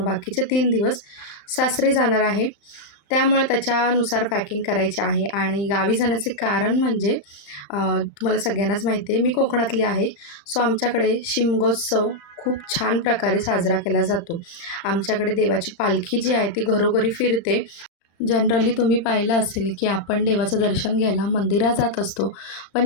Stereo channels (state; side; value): late; right; 35 ms